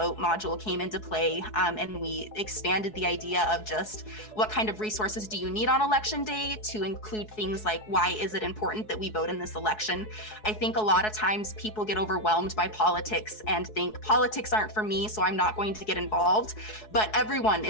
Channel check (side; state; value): right; late; 4.7 ms